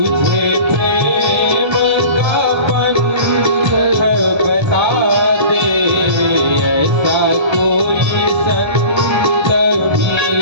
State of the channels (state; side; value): late; left; 1.3 ms